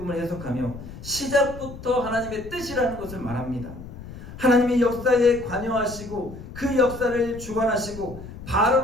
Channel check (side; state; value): left; noise; rumble, 13 dB below the sound